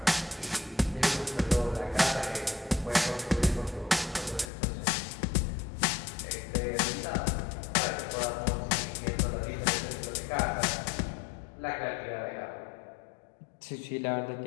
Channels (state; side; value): drops out; right; at 4.5 s